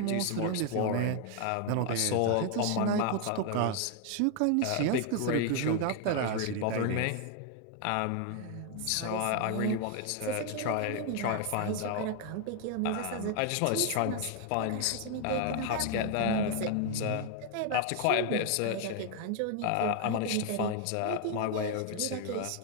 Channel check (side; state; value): both; different; correlation 0.01